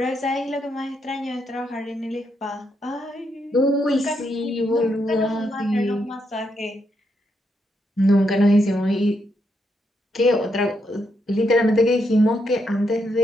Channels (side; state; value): both; normal; correlation 0.79